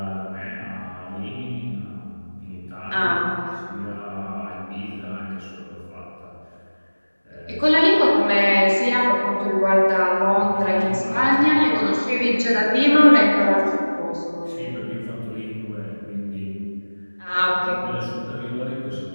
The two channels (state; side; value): inverted; both; correlation -1.00